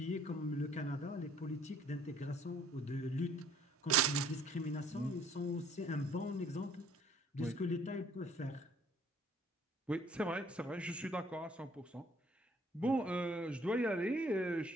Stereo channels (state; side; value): normal; both; correlation 0.58